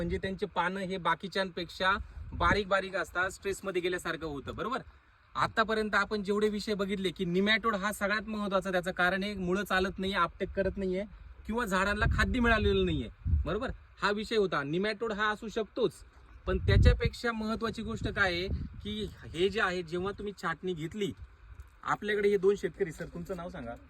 त्यांचे पानं हे बाकीच्यांपेक्षा बारीक बारीक असतात, स्ट्रेसमध्ये गेल्यासारखं होतं, बरोबर. आतापर्यंत आपण जेवढे विषय बघितले की निमॅटोड हा सगळ्यात महत्वाचा. त्याचं कारण हे मुळं चालत नाहीये, आपटेक करत नाहीये किंवा झाडांना खाद्य मिळालेलं नाहीये, बरोबर. हा विषय होता. निमॅटोड हा असू शकतोच, पण त्याच्यापेक्षा महत्वाची गोष्ट काय आहे की हे जे आहे, जेव्हा तुम्ही छाटणी घेतली, आपल्याकडे हे दोन शेतकरी, सर तुमचं नाव सांगा.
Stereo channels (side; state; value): both; identical; correlation 1.00